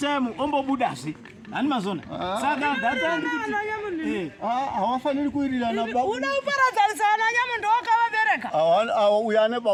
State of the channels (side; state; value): both; identical; correlation 1.00